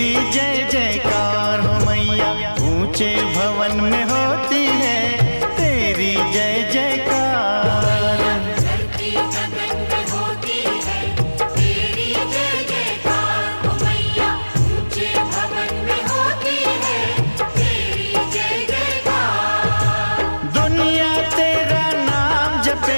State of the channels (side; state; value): both; inverted; correlation -1.00